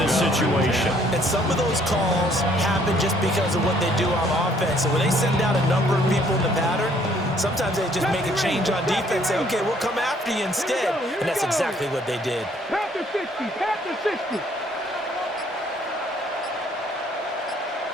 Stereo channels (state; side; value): normal; both; correlation 0.63